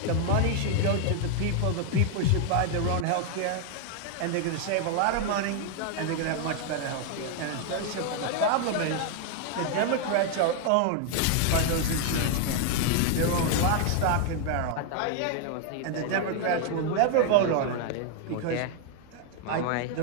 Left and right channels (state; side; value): different; both; correlation 0.00